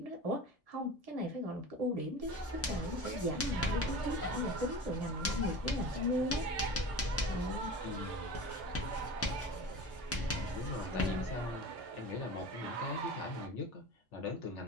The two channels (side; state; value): both; normal; correlation 0.34